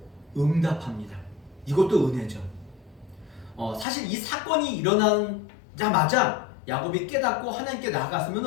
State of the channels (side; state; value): right; drops out; at 3.9 s